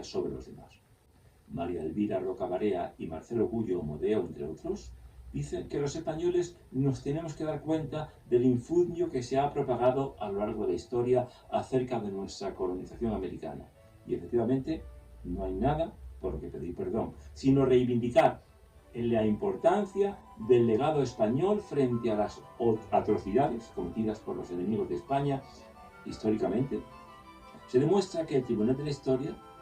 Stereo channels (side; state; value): both; identical; correlation 1.00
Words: sobre los demás. María Elvira Roca Barea y Marcelo Gullo Modeo, entre otros, dicen que los españoles nos tenemos que dar cuenta del infundio que se ha propagado a lo largo de la historia acerca de nuestra colonización americana. Y efectivamente, no hay nada por lo que pedir perdón, sino reivindicar la importancia del legado español frente a las atrocidades cometidas por los enemigos de España históricamente. Se demuestra que el Tribunal de la Historia